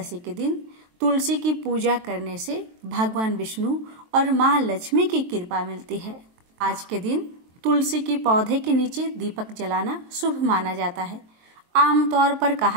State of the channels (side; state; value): left; late; 23 ms